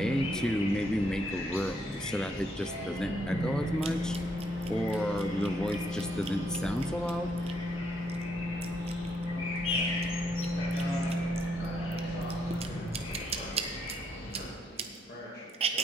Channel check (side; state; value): both; normal; correlation 0.74